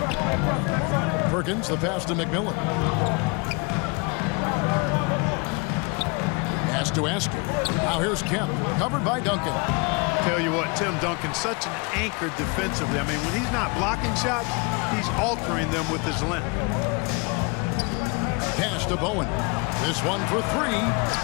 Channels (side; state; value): right; quieter; 30.3 dB